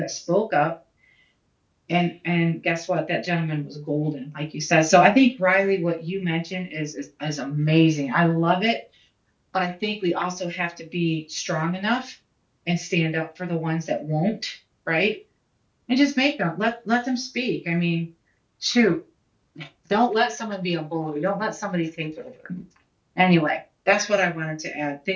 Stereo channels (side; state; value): both; identical; correlation 1.00